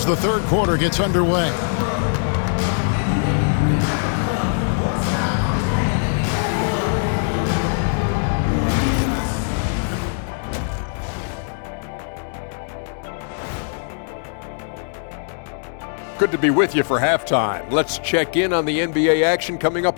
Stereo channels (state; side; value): silent; right; digital silence